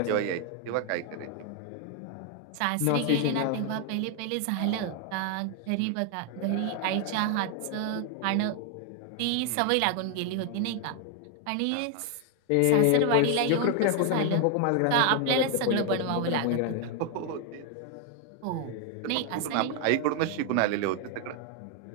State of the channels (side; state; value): both; different; correlation 0.00